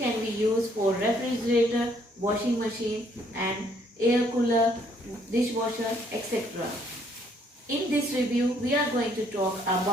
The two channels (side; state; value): both; normal; correlation 0.66